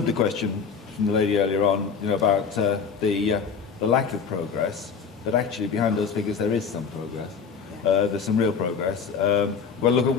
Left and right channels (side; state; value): right; quieter; 6.1 dB